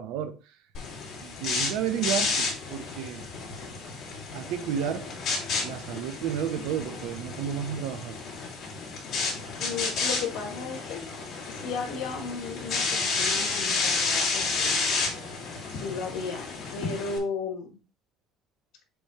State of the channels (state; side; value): normal; both; correlation 0.41